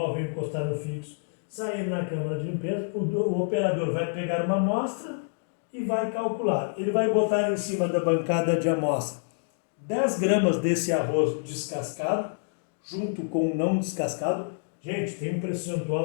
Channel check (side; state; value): right; silent; digital silence